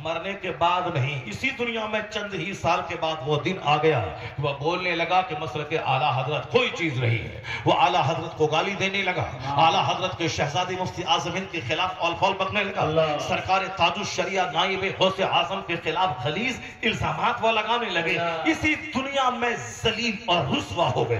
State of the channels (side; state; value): both; identical; correlation 1.00